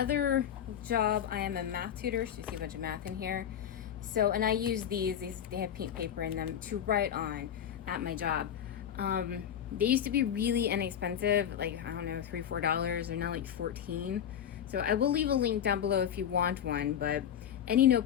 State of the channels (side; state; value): right; quieter; 9.4 dB